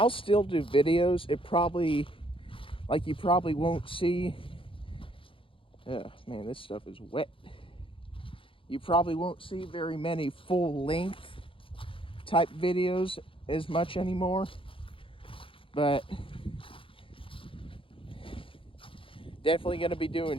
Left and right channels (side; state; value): right; late; 0.25 ms